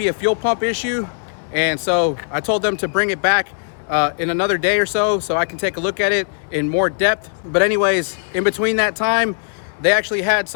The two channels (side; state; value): right; silent; digital silence